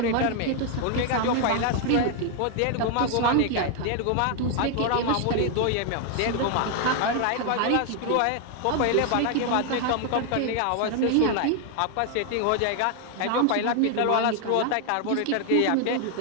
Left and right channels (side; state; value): both; different; correlation 0.00